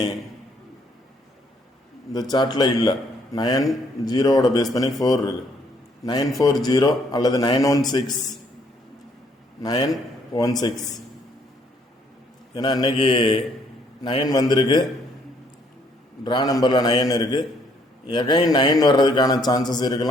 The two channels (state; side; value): normal; both; correlation 0.67